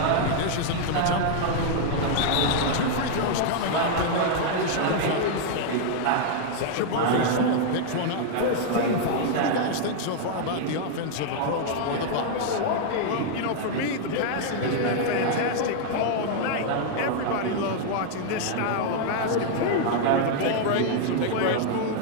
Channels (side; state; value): both; different; correlation 0.00